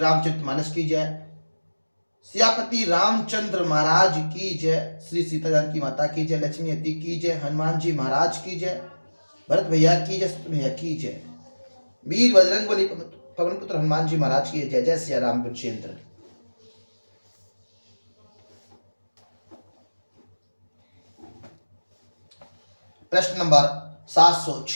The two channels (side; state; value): both; inverted; correlation -1.00